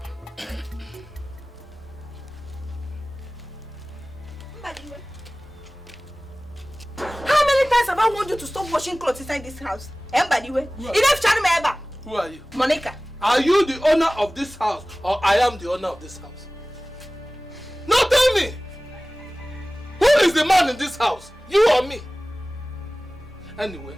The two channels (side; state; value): both; normal; correlation 0.98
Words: How many times have I warned you to stop washing clothes inside this house? Who are you? Monica. Are you the owner of this house or I am the owner of this house? No, tell me! Who is the man in this house? You or me? Anyway,